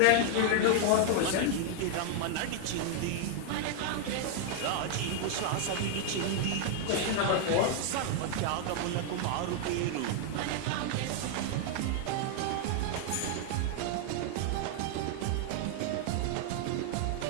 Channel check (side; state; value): both; different; correlation 0.00